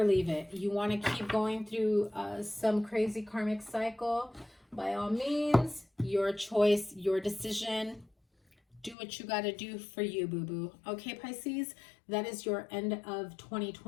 leave it. You want to keep going through some crazy karmic cycle? By all means, your choice, your decision. Do what you got to do for you, boo-boo. Okay, Pisces, that is your end of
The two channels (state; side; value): drops out; right; at 9.0 s